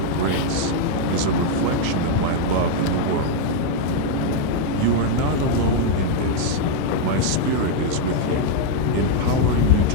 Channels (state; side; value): different; both; correlation 0.00